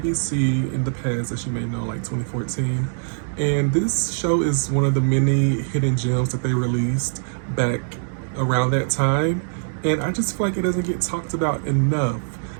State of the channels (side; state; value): left; silent; digital silence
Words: in the past, as you may know, like 2014. And this show is one of the many hidden gems that they released back around that time. And I just feel like it doesn't get talked about enough.